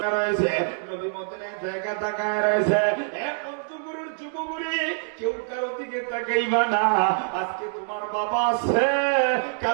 রয়েছে নবী মদিনায় জায়গা তাকায় রয়েছে পঞ্চগড়ের যুবগুড়ি কেউ কারো দিকে তাকাইবা না আজকে তোমার বাবা আছে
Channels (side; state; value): left; silent; digital silence